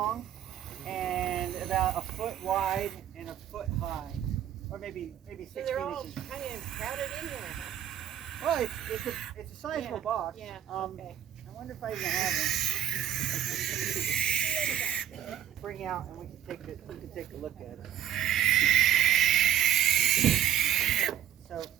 and about a foot wide and a foot high, or maybe 16 So they're all inches. kind of crowded in there, huh? Well, it's a sizable box. Yeah, okay. I wonder if I even have them. Bring out and we can take a look at it. So.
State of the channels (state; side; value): quieter; left; 10.8 dB